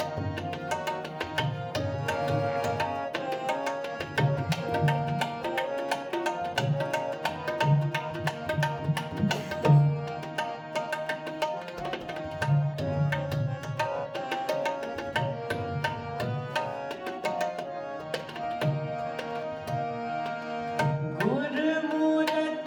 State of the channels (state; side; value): identical; both; correlation 1.00